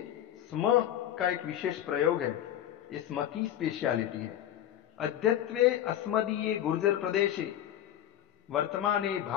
स्म का एक विशेष प्रयोग है, ये स्म की स्पेशलिटी है। अद्यत्वे अस्मदीये गुर्जर प्रदेशे वर्तमाने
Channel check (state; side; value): quieter; right; 11.5 dB